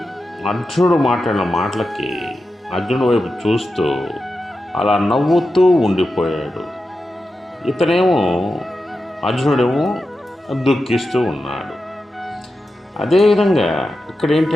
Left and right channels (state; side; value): normal; both; correlation 0.90